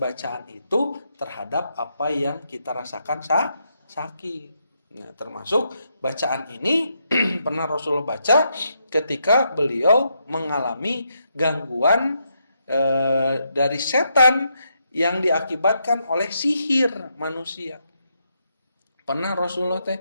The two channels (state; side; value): inverted; both; correlation -0.80